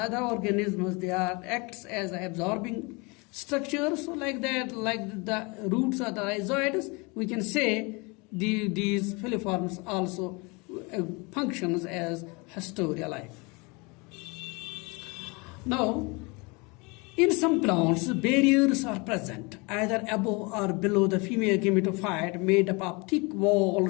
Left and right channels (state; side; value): quieter; right; 28.2 dB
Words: other organisms, they acts as absorbing structures. So like that, like the roots of the rhizoids, we can say these filiforms also functions as hysteria-like. Now, In some plants, barriers are present, either above or below the female gametophyte, made up of thick